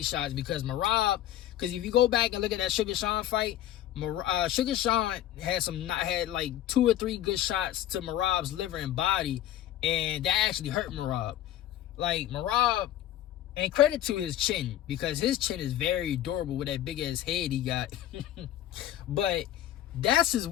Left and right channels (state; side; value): quieter; right; 12.5 dB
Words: shots because Merab. Because if you go back and look at that Sugar Sean fight, Sugar Sean had like 2 or 3 good shots to Merab's liver and body, and that actually hurt Merab. Like, Merab, and credit to his chin, because his chin is very durable with that big ass head he got. But that's his